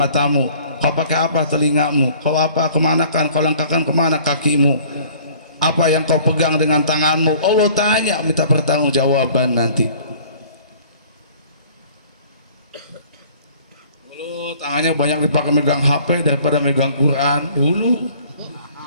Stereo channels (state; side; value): inverted; both; correlation -0.53